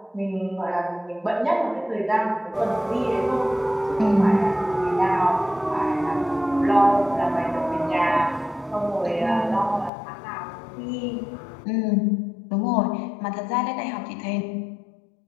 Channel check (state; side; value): drops out; right; at 9.9 s